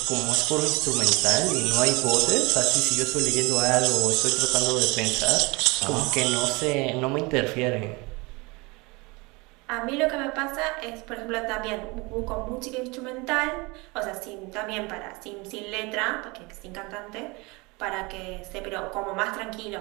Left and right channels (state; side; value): quieter; left; 25.8 dB